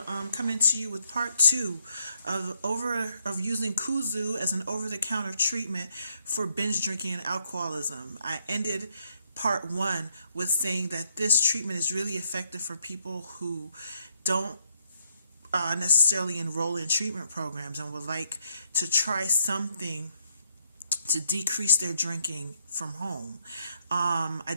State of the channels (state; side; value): inverted; both; correlation -0.74